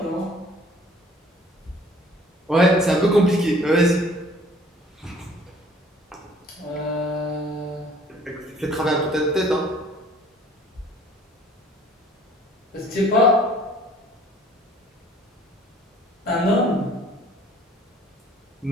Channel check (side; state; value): both; normal; correlation 0.53